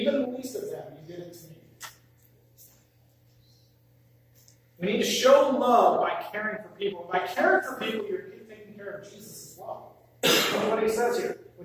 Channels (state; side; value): identical; both; correlation 1.00